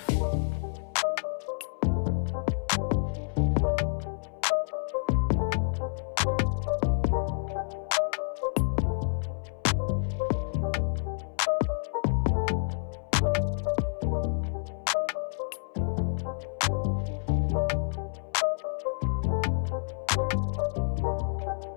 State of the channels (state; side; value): silent; right; 59 dB below the other